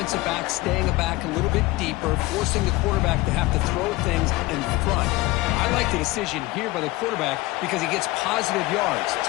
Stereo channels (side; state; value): right; quieter; 19.8 dB